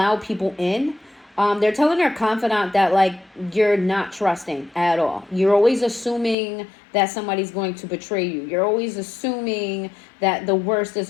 people in. They're telling their confidant that, like, you're not trusting at all. You're always assuming that somebody's going to betray you. You're always assuming that the worst is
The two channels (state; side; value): drops out; right; at 6.4 s